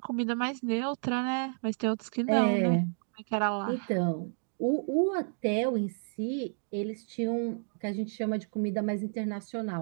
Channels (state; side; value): silent; left; digital silence